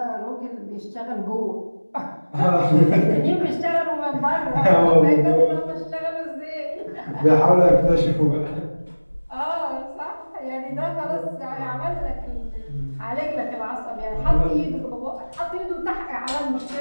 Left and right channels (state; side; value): inverted; both; correlation -1.00